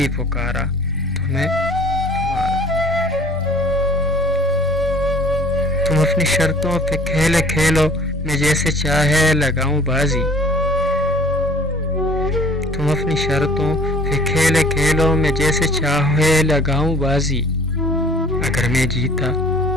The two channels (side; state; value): both; normal; correlation 0.51